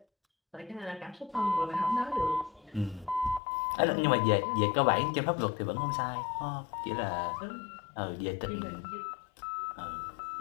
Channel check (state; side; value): drops out; right; at 3.4 s